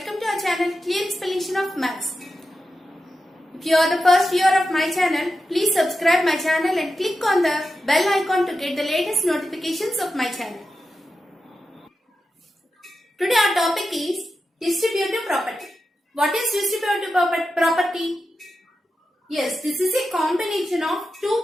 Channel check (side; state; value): both; normal; correlation 0.90